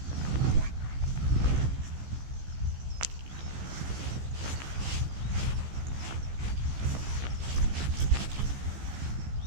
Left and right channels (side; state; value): left; late; 15 ms